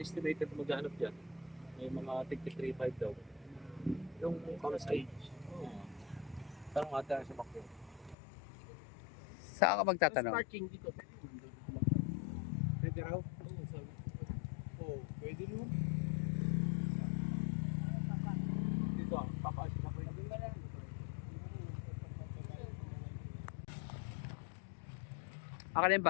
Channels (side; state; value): right; drops out; at 8.2 s